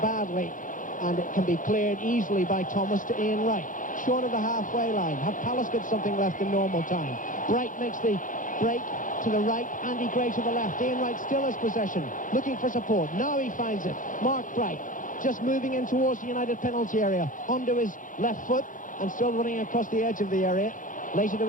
badly, and it can be cleared easily by Thomas to Ian Wright. Short of the halfway line. Have Palace got something left in normal time? Bright makes the break to the right, Andy Gray to the left. Ian Wright still has possession, looking for support. Now he finds it. Mark Bright just moving in towards the United penalty area, onto his left foot and still running across the edge of the area. Later to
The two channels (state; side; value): late; right; 0.38 ms